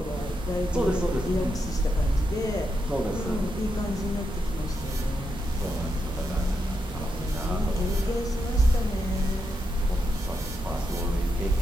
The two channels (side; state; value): both; normal; correlation 0.84